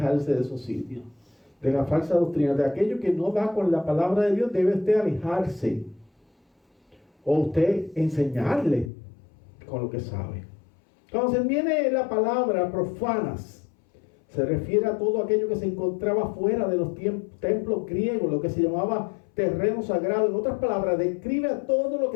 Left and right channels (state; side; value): drops out; right; at 8.9 s